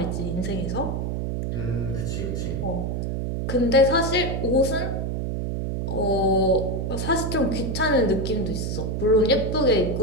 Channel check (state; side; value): noise; right; hum, 2 dB below the sound